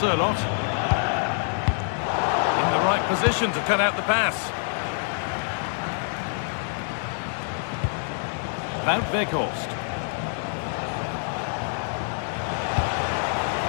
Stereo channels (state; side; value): silent; right; digital silence